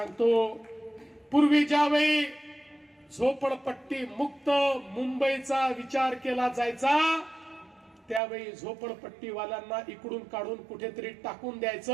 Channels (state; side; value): drops out; left; at 8.2 s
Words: पूर्वी ज्यावेळी झोपडपट्टी मुक्त मुंबईचा विचार केला जायचा त्यावेळी झोपडपट्टीवाल्यांना इकडून काढून कुठेतरी टाकून